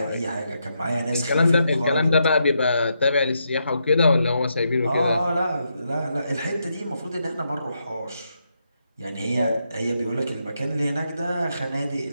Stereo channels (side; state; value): both; inverted; correlation -0.81